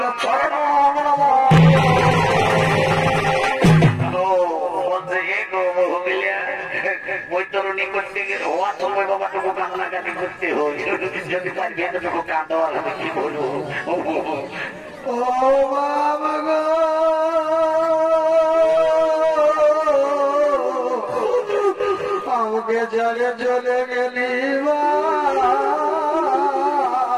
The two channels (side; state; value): both; identical; correlation 1.00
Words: শরণ নমঃ। বৈতরণী করতে গেলে হওয়ার সময় বাবাটুকু কান্নাকাটি করতে হয়, যদি তার ভেতরটুকু কাঁদা আমি কি বলবো। ও বাবা গো আমাকে জলে চলে গেলি